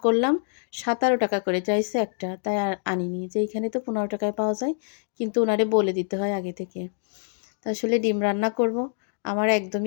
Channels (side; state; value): right; silent; 60 dB below the other